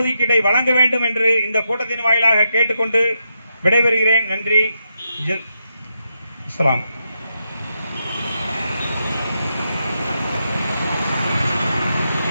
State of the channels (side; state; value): both; inverted; correlation -0.84